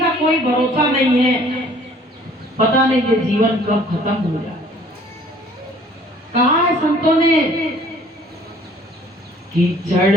कोई भरोसा नहीं है। पता नहीं ये जीवन कब खत्म हो जाए। कहा है संतों ने, कीचड़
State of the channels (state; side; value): normal; both; correlation 0.55